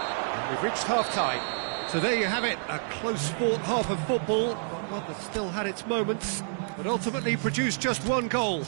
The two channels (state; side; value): silent; left; 59 dB below the other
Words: And we've reached half-time. So there you have it, a close-fought half of football, one that still had its moments, but ultimately produced just one goal.